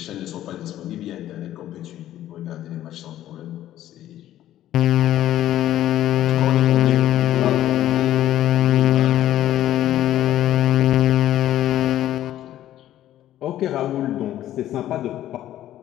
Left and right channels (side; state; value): right; quieter; 12.9 dB